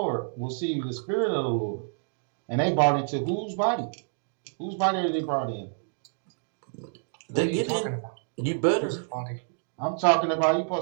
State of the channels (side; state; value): left; silent; digital silence